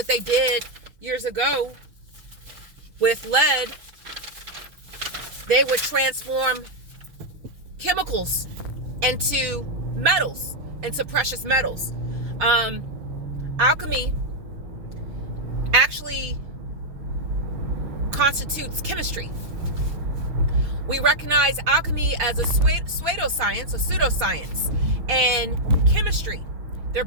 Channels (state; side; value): late; left; 6.5 ms